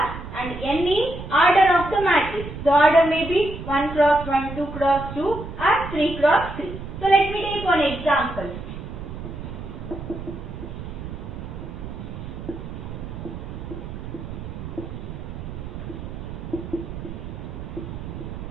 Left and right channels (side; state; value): right; noise; rumble, 9 dB below the sound